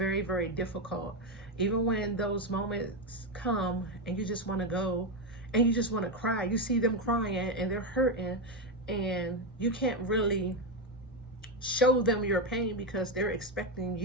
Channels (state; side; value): normal; both; correlation 0.08